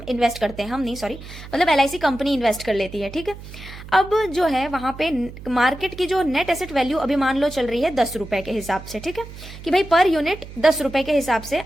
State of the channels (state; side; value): noise; right; hum, 14 dB below the sound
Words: इन्वेस्ट करते हैं, हम नहीं सॉरी मतलब LIC कंपनी इन्वेस्ट कर लेती है। ठीक है, अब जो है वहां पे मार्केट की जो नेट एसेट वैल्यू अभी मान लो चल रही है 10 रुपए के हिसाब से। ठीक है, कि भाई पर यूनिट 10 रुपए के हिसाब से